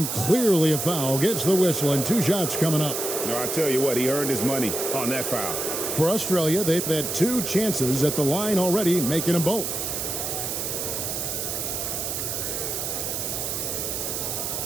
clearly a foul. Gets the whistle, and 2 shots coming up. No, I tell you what, he earned his money on that foul. For Australia, they've had 2 chances at the line already, making them both.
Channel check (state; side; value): noise; right; hiss, 2 dB below the sound